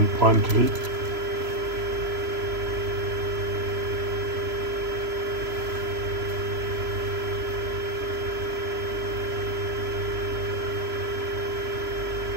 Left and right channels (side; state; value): left; late; 3.0 ms